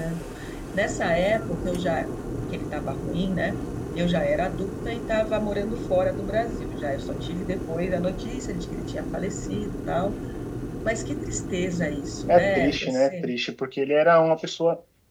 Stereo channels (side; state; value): both; identical; correlation 1.00